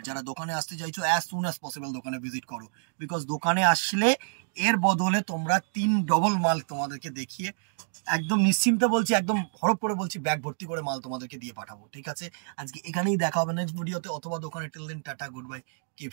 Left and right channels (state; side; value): silent; left; digital silence